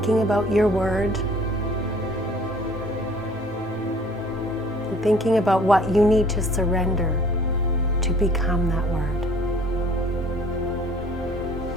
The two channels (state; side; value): normal; both; correlation 0.54